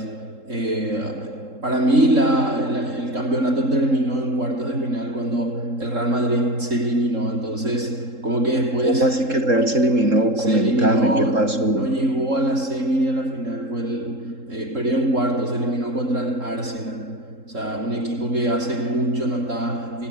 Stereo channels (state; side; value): late; left; 3.7 ms